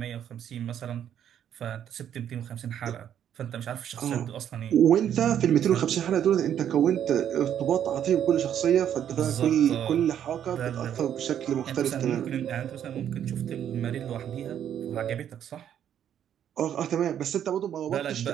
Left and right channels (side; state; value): left; quieter; 9.8 dB